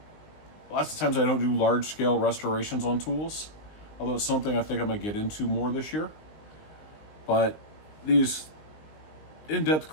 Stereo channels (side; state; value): right; late; 19 ms